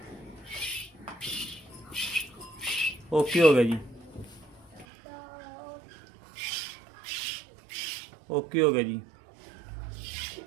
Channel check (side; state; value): left; drops out; at 4.9 s